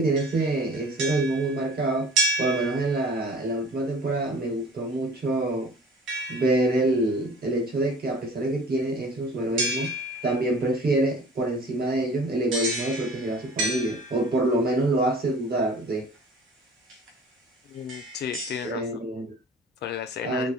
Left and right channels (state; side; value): normal; both; correlation 0.45